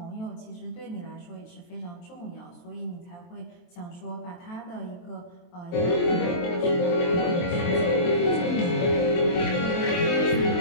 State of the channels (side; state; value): right; late; 23 ms